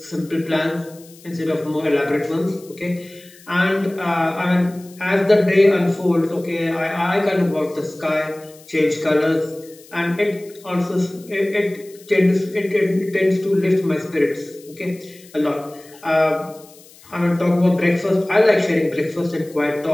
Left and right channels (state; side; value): noise; left; hiss, 24 dB below the sound